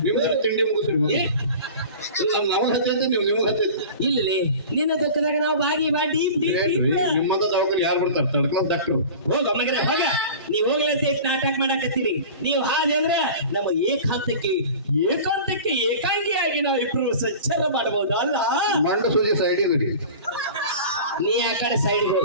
ನಿಮ್ದ್ರ ತಿಂಡಿ ಮುಗಿಸ್ರಿ ನಮಗ್ ಹತ್ತೈತಿ ನಿಮಗ್ ಹತ್ತೈತಿ ಇಲ್ಲಿ ನಿನ್ನ ದುಃಖದಾಗ ನಾವು ಬಾಗಿ ಬಾಡಿ ನಿಮ್ಮಂತ ದವಾಖಾನೆ ಯಾರು ಬರ್ತಾರ ತಡ್ಕೊಂಡ್ ಡಾಕ್ಟರ್ ಹೋಗ ಮಗನೇ ಹೋಗ ನೀವ್ ಹೋಗ್ಲಂತ ನಾಟಕ ಮಾಡಾಕತ್ತೀರಿ ನೀವು ಹಾಗೆ ಅಂದ್ರೆ ನಮ್ಮ ಏಕಾಂತಕ್ಕೆ ಏಕಾಂಗಿಯಾಗಿ ನಾವು ಇಬ್ರು ಸಂಚಾರ ಮಾಡಬಹುದು ಅಲ್ಲ ಮಂಡ ಸೂಜಿ ಸೈಡ್ ಇದ್ರಿ ನೀ ಆ ಕಡೆ ಸೈಡ್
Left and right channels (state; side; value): inverted; both; correlation -0.38